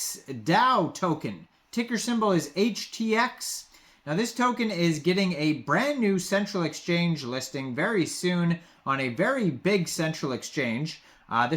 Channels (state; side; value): identical; both; correlation 1.00